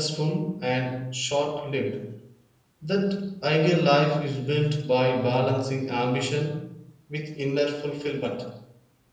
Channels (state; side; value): identical; both; correlation 1.00